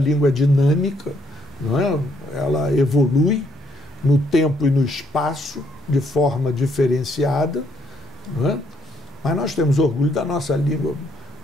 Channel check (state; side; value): normal; both; correlation 0.70